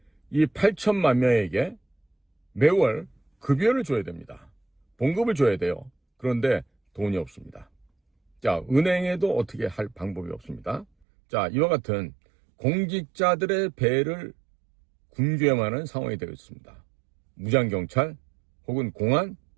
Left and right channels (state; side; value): drops out; left; at 10.9 s